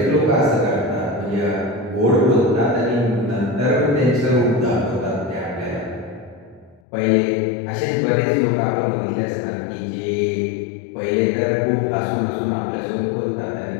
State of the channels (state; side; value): drops out; right; at 6.8 s